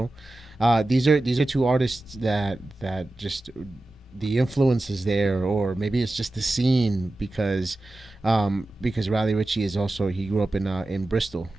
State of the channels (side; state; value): both; normal; correlation 0.95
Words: These are two artists that just the influence is there, or maybe it's just the scene because Raleigh Ritchie is also, he grew up in Bristol.